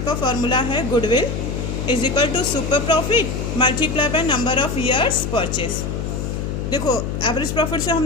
का फॉर्मूला है goodwill is equal to super profit multiply by number of years purchase. देखो एवरेज प्रॉफिट से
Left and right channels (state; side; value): noise; left; hum, 3 dB below the sound